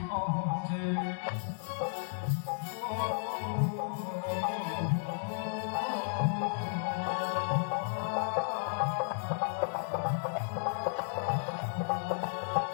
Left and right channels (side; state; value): right; silent; 55 dB below the other